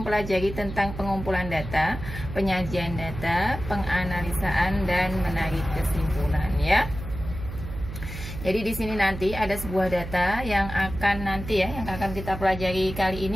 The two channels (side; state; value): right; noise; hum, 9 dB below the sound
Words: tentang pengumpulan data, penyajian data, penganalisaan, dan menarik kesimpulan ya. Jadi di sini nanti ada sebuah data yang akan yang akan kita pelajari kali